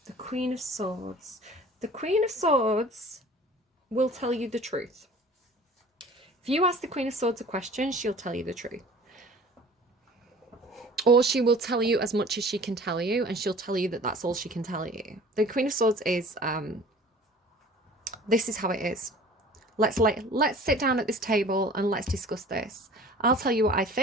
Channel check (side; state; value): both; normal; correlation 0.46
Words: The Queen of Swords. The Queen of Swords will tell you the truth. If you ask the Queen of Swords a question, she'll tell you the truth. Or she will tell you as much as she can tell you, and she'll tell you that that's all she can tell you. The Queen of Swords is, this is how it is. Let's sit down at this table and let's discuss this. I'll tell you what I